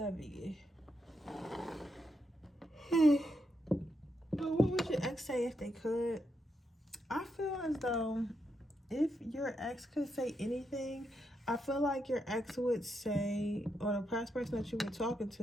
But what would your ex say if they could? I feel as though if your ex could say anything, I feel like your ex would say, or the past person that you were talking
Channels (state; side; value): normal; both; correlation 0.82